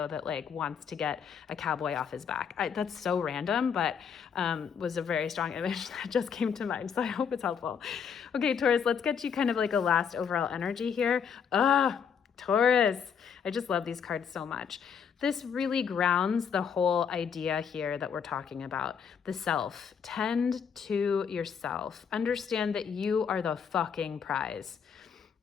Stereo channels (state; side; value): quieter; right; 7.0 dB